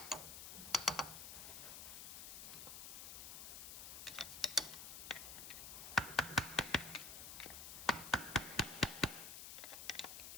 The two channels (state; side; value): noise; left; hiss, 8 dB below the sound